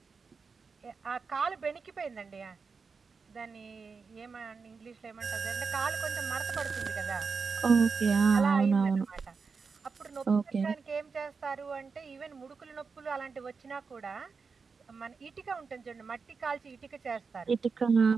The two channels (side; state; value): left; quieter; 5.0 dB